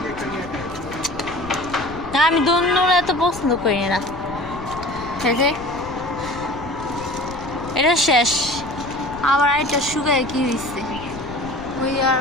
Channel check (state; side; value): noise; left; rumble, 15 dB below the sound